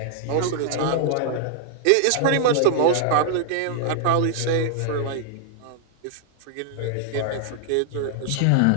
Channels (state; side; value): different; both; correlation -0.01